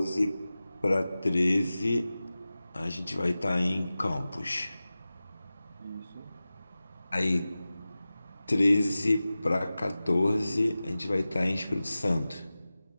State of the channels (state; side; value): inverted; both; correlation -0.96